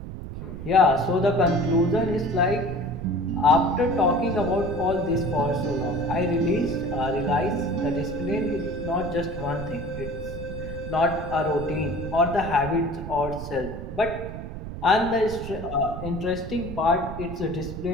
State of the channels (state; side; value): noise; right; rumble, 9 dB below the sound